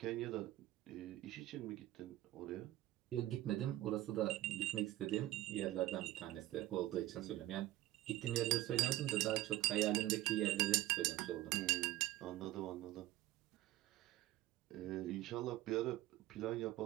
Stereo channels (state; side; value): quieter; left; 15.6 dB